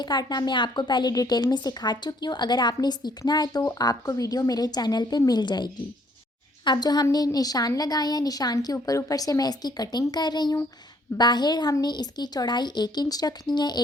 काटना मैं आपको पहले डिटेल में सिखा चुकी हूँ। अगर आपने सीखना है तो आपको वीडियो मेरे चैनल पे मिल जाएगी। अब जो हमने निशान लगाए हैं, निशान के ऊपर ऊपर से मैं इसकी कटिंग कर रही हूँ। बाहर हमने इसकी चौड़ाई 1 इंच रखनी है।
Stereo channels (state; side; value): normal; both; correlation 0.64